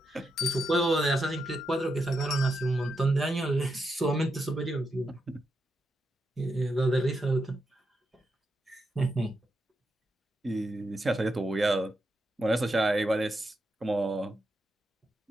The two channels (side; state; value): both; normal; correlation 0.85